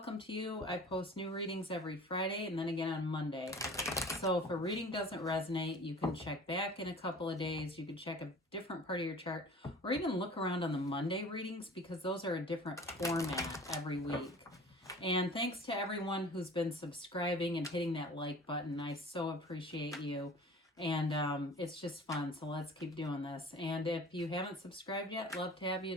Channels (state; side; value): normal; both; correlation 0.44